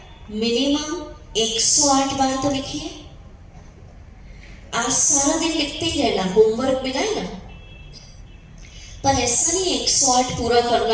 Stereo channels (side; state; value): both; identical; correlation 1.00